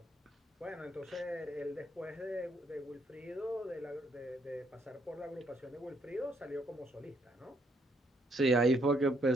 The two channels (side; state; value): both; normal; correlation 0.71